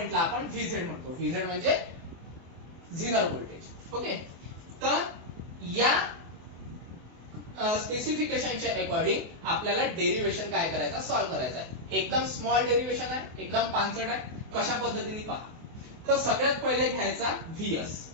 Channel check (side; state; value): left; late; 24 ms